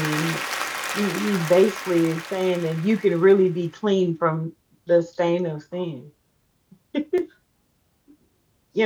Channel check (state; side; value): identical; both; correlation 1.00